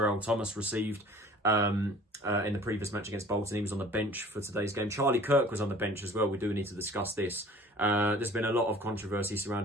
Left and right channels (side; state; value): both; normal; correlation 0.48